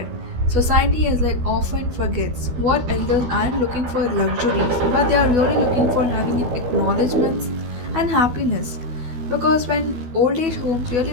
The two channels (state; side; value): late; left; 12 ms